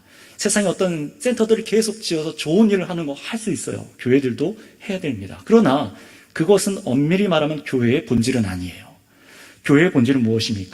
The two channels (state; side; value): identical; both; correlation 1.00